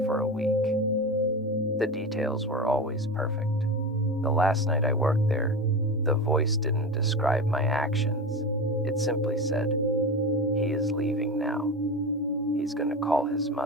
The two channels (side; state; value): both; normal; correlation 0.24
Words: for a week. The details were always perfect. The last night I worked there, the voice didn't describe my actions. It simply said, "He is leaving now. He's going to call his